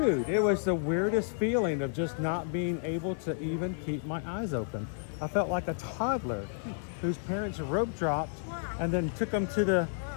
it was the weirdest feeling of just not being able to even keep my eyes open. I felt like a toddler whose parents rope dropped and then took them to the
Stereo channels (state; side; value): silent; right; 57 dB below the other